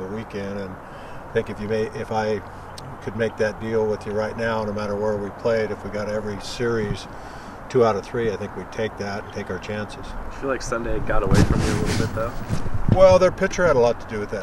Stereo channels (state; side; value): identical; both; correlation 1.00